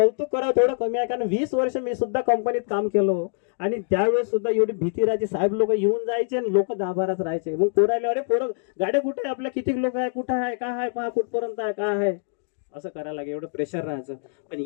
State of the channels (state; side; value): silent; right; digital silence